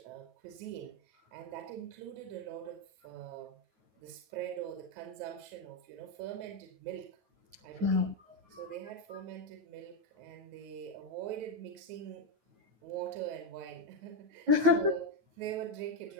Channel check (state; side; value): late; left; 9.3 ms